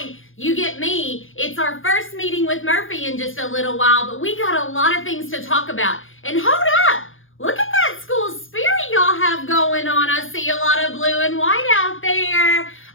you get me. It's our first meeting with Murphy in just a little while, but we got a lot of things to talk about. And hold up! Look at that school spirit y'all have going on. I see a lot of blue and white out there.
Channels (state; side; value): late; right; 0.58 ms